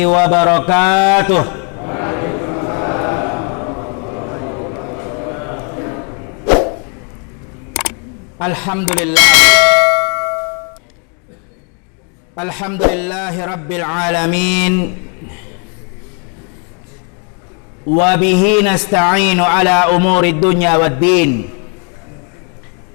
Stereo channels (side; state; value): right; quieter; 38.8 dB